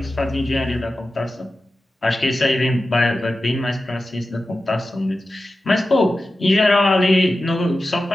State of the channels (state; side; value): normal; both; correlation 0.93